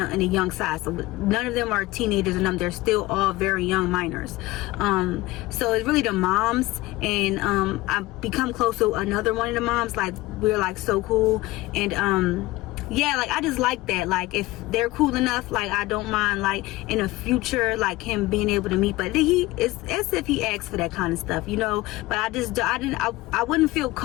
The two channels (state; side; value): quieter; right; 19.1 dB